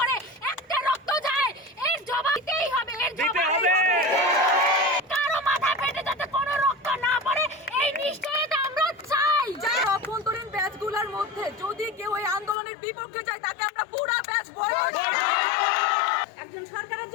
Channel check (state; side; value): drops out; right; at 12.6 s